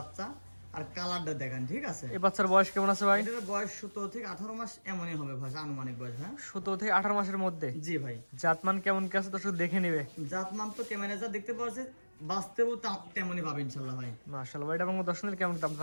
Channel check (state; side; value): inverted; both; correlation -1.00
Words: আর কালারটা দেখেন ঠিক আছে। এই বাচ্চার বয়স কেমন আছে ভাই? এটার বয়স 17 থেকে 18 মাস এমনই হবে ভাই, আনুমানিক বয়স। হ্যাঁ 17 থেকে 18 মাসের মধ্যে। জি ভাই। জাতমান কেমন কি আছে দর্শক দেখে নেবে। জাতমান তো ক্যামেরা যা দেখতে পাচ্ছে বাস্তবেও তেমনই পাবে ইনশাআল্লাহ ভাই। মাশাআল্লাহ ভাই, এটা আমার দর্শনের কেমন দাম